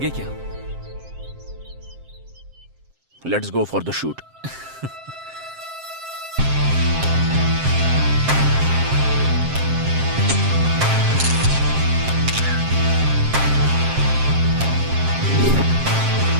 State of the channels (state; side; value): late; left; 7.6 ms